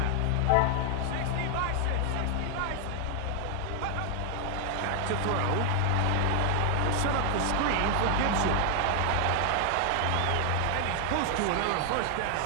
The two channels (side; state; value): both; different; correlation 0.00